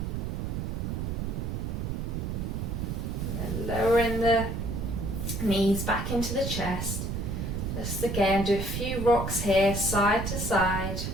Lowering the knees back into the chest. Just again, do a few rocks here, side to side.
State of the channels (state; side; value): noise; right; rumble, 2 dB below the sound